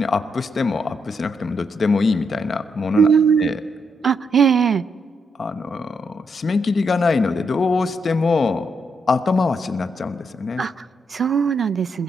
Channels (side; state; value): both; normal; correlation 0.79